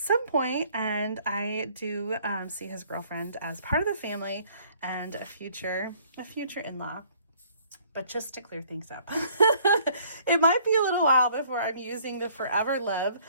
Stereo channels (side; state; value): both; inverted; correlation -0.59